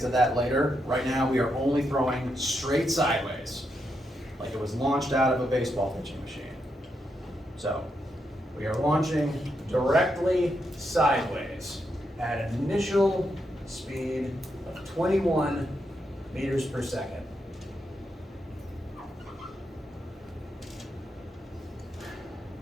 to that later. Right now, we are only throwing straight sideways, like it was launched out of a baseball pitching machine. So, we are launching directly sideways at an initial speed of 21 meters per second.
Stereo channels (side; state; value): both; normal; correlation 0.82